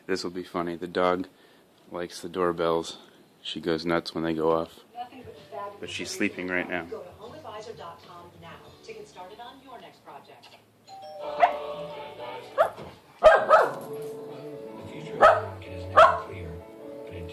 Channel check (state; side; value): identical; both; correlation 1.00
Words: This will be funny. The dog likes the doorbells. She goes nuts when they go off. But she's sleeping right now. Go to HomeAdvisor.com now to get started on your next project. The future of the market is never clear, but in